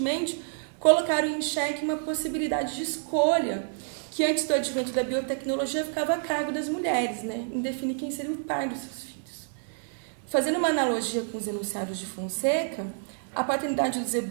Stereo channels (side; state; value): left; silent; 59 dB below the other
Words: colocaram em xeque uma possibilidade de escolha que, antes do advento da biotecnologia, ficava a cargo das mulheres, né, em definir quem seria o pai dos seus filhos. Fazendo uma analogia com os enunciados de Fonseca, a paternidade dos